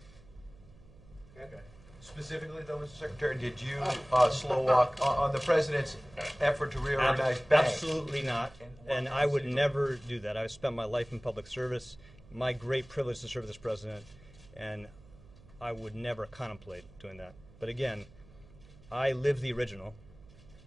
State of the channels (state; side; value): noise; right; hum, 23 dB below the sound